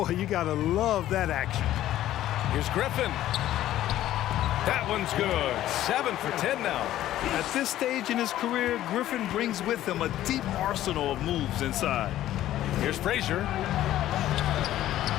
you got to love that action. Here's Griffin. That one's good. 7 for 10 now. At this stage in his career, Griffin brings with him a deep arsenal of moves inside. Here's Frazier.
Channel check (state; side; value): quieter; right; 13.4 dB